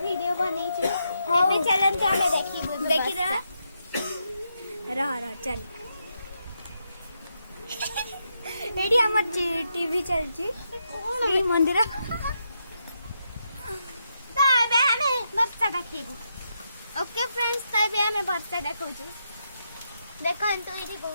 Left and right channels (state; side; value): inverted; both; correlation -0.82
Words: ଭିଡିଓ ବନେଇଛୁ। ଏବେ ଚାଲନ୍ତୁ ଆମେ ଦେଖିଦେବା। ରହ ଚାଲ ଏଠି ଆମର टीवी चलची श्री मंदिर ଏବେ ଆମେ ବର୍ଷା ଦେଖେଇବୁ। ओके फ्रेंड्स तो ଏବେ ଆମେ ବର୍ଷା ଦେଖଉଛୁ। ଦେଖନ୍ତୁ ଏଠି